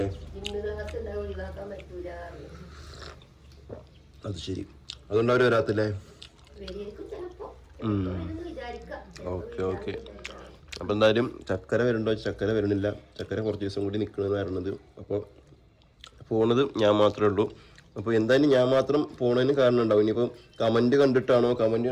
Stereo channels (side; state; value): both; identical; correlation 1.00